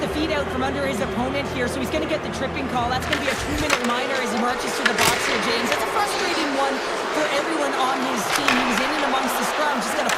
feet out from under his opponent here, so he's going to get the tripping call. That's going to be a 2-minute minor as he marches to the box here, James. That's a frustrating one for everyone on his team. He was in and amongst the scrum, just going to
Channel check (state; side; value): identical; both; correlation 1.00